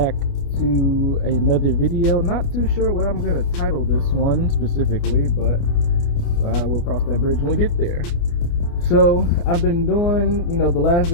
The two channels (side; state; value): right; late; 29 ms